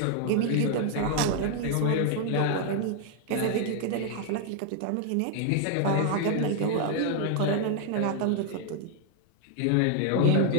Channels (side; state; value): both; different; correlation 0.00